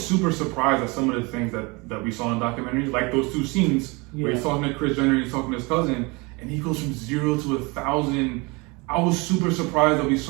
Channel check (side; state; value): left; quieter; 27.2 dB